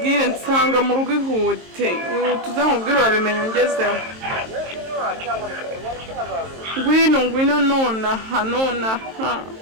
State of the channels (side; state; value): left; late; 23 ms